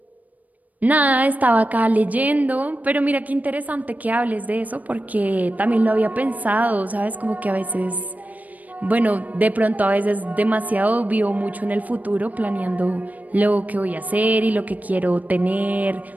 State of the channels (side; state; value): left; late; 0.075 ms